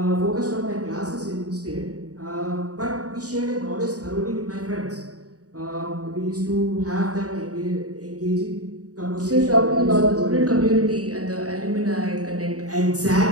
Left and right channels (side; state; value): left; late; 0.67 ms